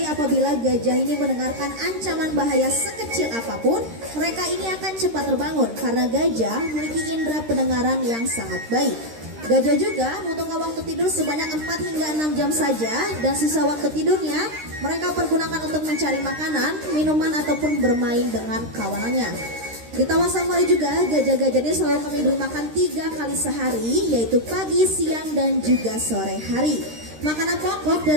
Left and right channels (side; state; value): left; late; 13 ms